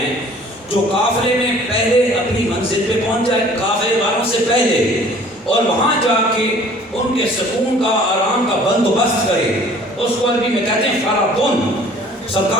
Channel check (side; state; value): both; normal; correlation 0.52